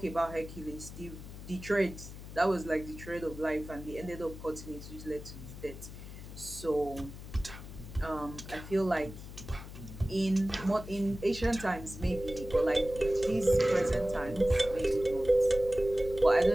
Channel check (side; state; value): left; noise; hum, 13 dB below the sound